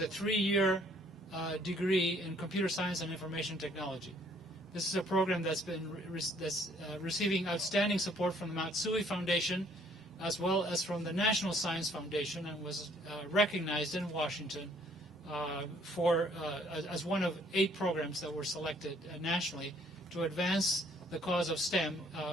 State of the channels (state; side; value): normal; both; correlation 0.62